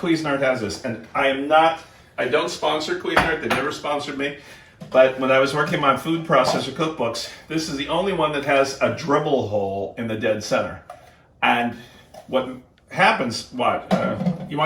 has this. And I don't sponsor Cuisinart, they never sponsored me. But when I was working on food processor cookbooks, this is the only one that has a dribble hole in the dead center. And what happens, you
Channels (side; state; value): both; identical; correlation 1.00